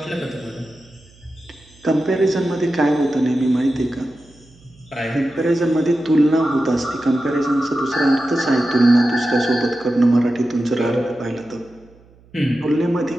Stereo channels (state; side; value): noise; right; hum, 28 dB below the sound